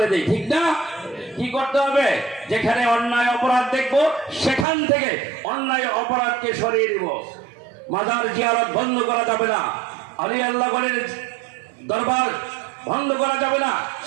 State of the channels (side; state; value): left; drops out; at 4.7 s